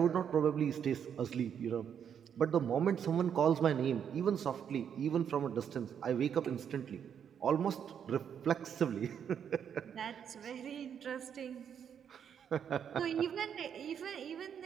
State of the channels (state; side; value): quieter; left; 8.2 dB